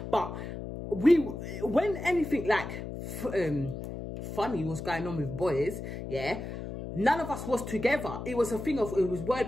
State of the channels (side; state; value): left; noise; hum, 8 dB below the sound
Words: But when anything like funny was going on with boys, yeah, none of us was together. It was a thing of, it was